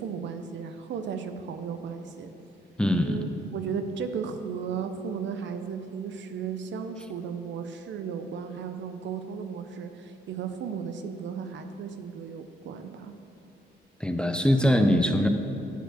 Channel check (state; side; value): normal; both; correlation 0.73